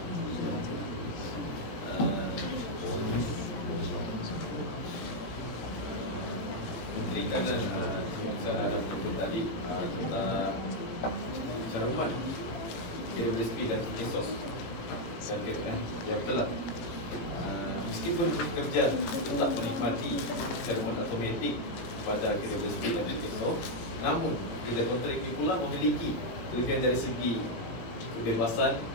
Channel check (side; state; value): right; late; 17 ms